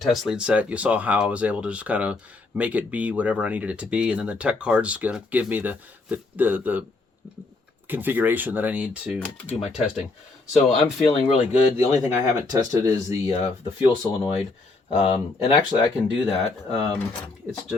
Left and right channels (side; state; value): right; quieter; 3.5 dB